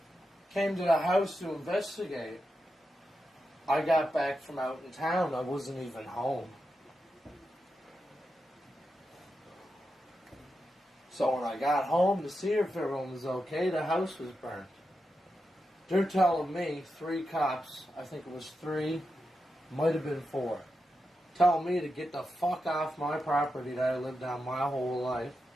Came to the house to investigate. I got back from out in town. I wasn't even home. So when I got home to see if everyone was okay, the house was burnt. They're telling me 3 cops, I think it was 3, might have been 4, telling me to get the fuck off my property that I lived on my whole life,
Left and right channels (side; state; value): both; normal; correlation 0.88